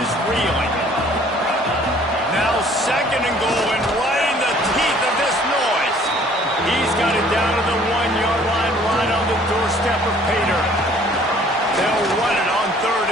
reeling. Now 2nd and goal, and right in the teeth of this noise. He's got it down to the 1-yard line, right on the doorstep of Pater. They'll run it on 3rd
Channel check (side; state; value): both; normal; correlation 0.56